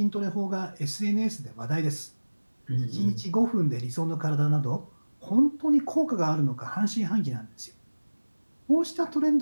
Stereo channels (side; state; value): both; inverted; correlation -1.00